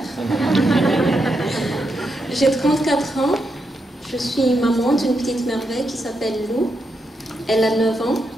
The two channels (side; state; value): both; normal; correlation 0.83